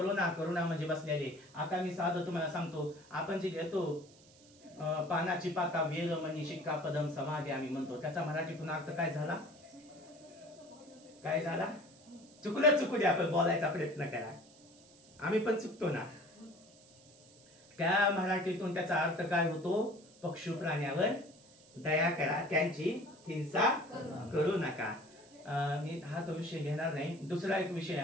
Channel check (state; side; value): noise; right; hiss, 25 dB below the sound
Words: म्हणजे बसलेले. आता मी साधं तुम्हाला सांगतो, आपण जे घेतो पानाची पाता, वेल मनी शिक्का पदम समाधी आम्ही म्हणतो, त्याचा मराठीतून अर्थ काय झाला? काय झाला? चुकू द्या, आपण बोलायचा प्रयत्न करा. आम्ही पण चुकतो ना. त्या मराठीतून त्याचा अर्थ काय होतो? पशु प्राण्यावर दया करा, त्यांची हिंसा करू नका. मी हा तो विषय घेणार नाही. दुसरा एक विषय